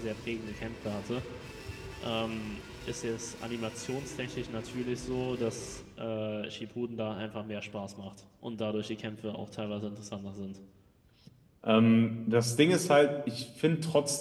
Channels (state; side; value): identical; both; correlation 1.00